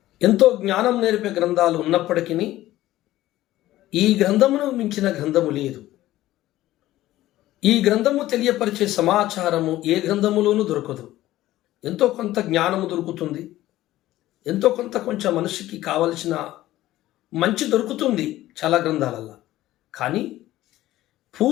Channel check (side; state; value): right; quieter; 15.3 dB